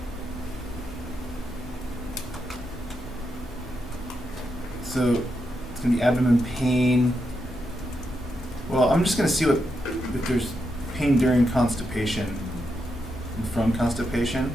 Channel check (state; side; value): normal; both; correlation 0.84